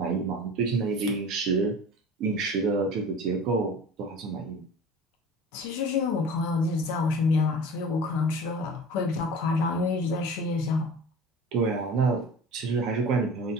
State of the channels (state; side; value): normal; both; correlation 0.39